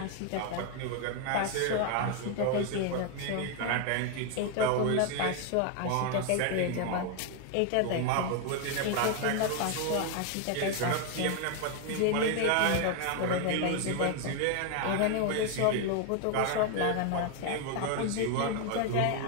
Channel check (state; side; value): different; both; correlation 0.01